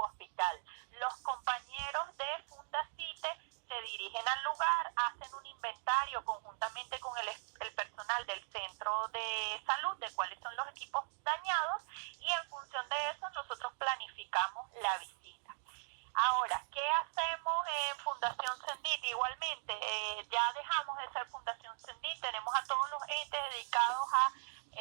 Los compañeros de Fundacite se dirigen al lugar, hacen un inventario conjuntamente con el personal del centro de salud de cuáles son los equipos dañados y en función de eso nosotros planificamos la visita. Ahora, ¿qué hacemos en Fundación CENDIT? Igualmente, ya dejamos de ser Fundación CENDIT, tenemos a todos los entes dedicados a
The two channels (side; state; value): left; silent; digital silence